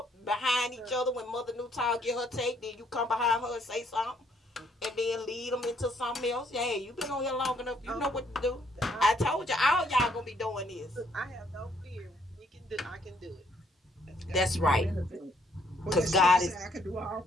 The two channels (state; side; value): normal; both; correlation 0.68